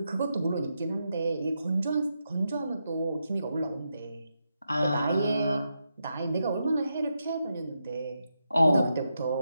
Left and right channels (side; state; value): both; inverted; correlation -0.85